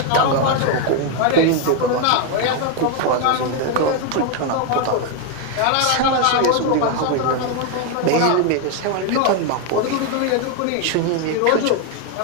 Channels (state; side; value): different; both; correlation 0.01